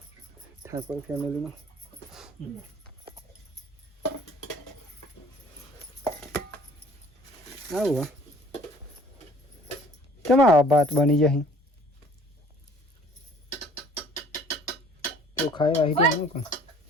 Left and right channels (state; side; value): normal; both; correlation 0.53